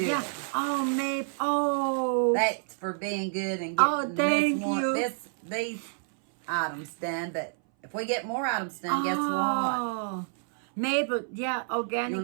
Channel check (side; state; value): left; silent; 59 dB below the other